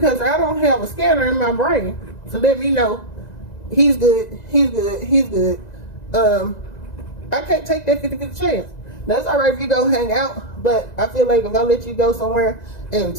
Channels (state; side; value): late; right; 1.9 ms